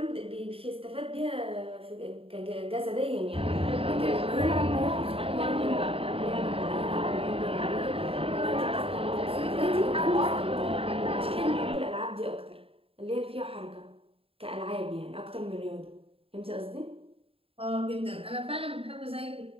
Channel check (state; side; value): late; left; 0.27 ms